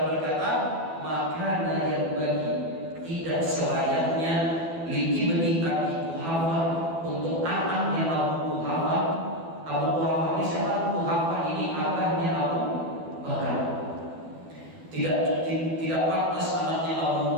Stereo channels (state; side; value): late; left; 12 ms